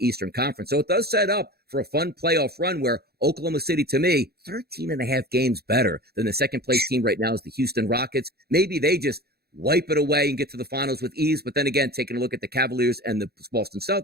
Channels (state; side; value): late; left; 0.46 ms